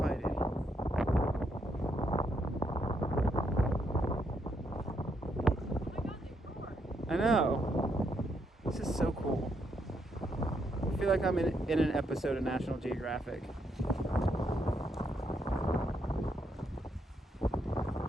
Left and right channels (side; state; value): both; normal; correlation 0.77